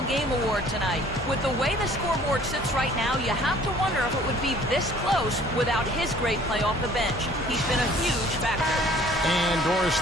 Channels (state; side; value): normal; both; correlation 0.54